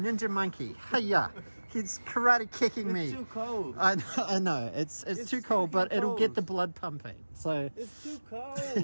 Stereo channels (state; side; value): inverted; both; correlation -1.00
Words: Monkey. Hiya. He's karate kicking me. It's too cold. I know. It's too cold, but it'll get the blood pumping. So it's too